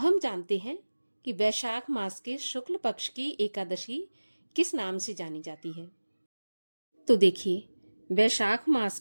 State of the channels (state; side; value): inverted; both; correlation -1.00